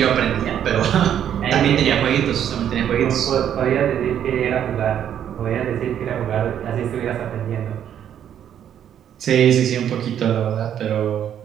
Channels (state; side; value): quieter; left; 9.7 dB